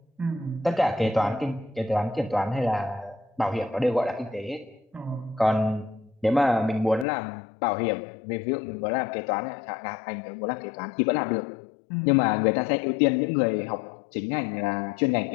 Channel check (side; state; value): right; drops out; at 7.1 s